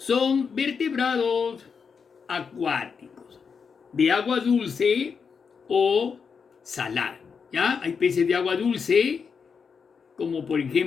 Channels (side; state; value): right; quieter; 5.9 dB